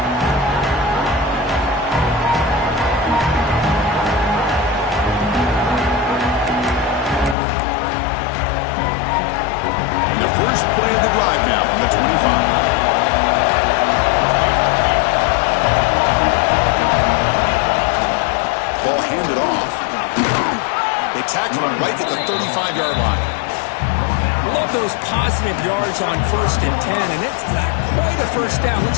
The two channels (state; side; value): drops out; right; at 7.4 s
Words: And the first play of the drive now from the 25. Ball handed off. They tackle him right at the 35-yard line. Love those positive yards on 1st and 10, and it's not quite a 1st down.